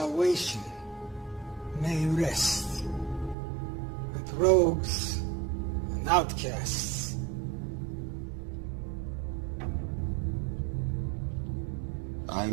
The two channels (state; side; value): drops out; left; at 3.4 s